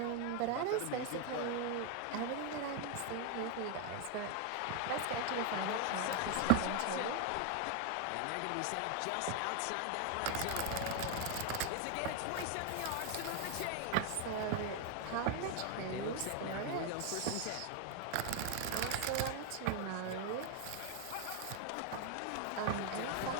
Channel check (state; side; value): different; both; correlation 0.00